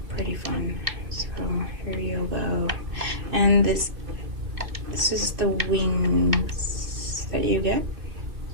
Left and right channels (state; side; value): late; left; 2.4 ms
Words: pretty fun. So here you go, and this is the wings that you get.